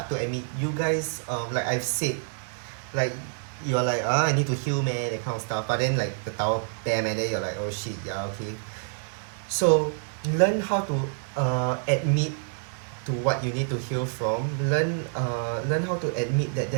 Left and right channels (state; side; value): silent; left; digital silence